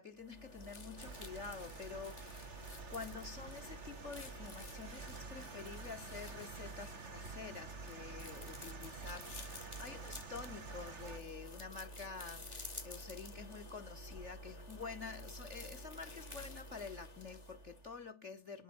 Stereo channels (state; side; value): late; left; 3.4 ms